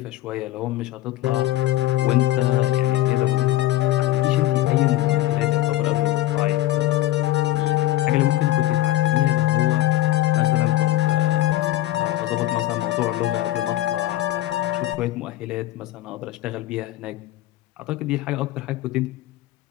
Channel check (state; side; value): quieter; right; 15.3 dB